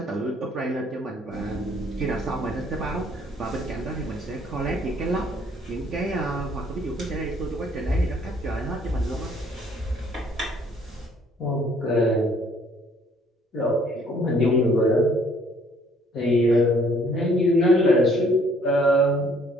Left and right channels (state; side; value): normal; both; correlation 0.62